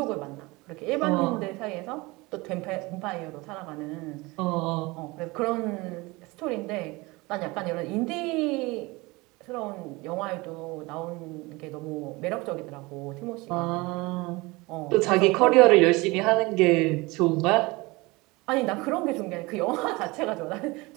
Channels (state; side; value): quieter; left; 23.4 dB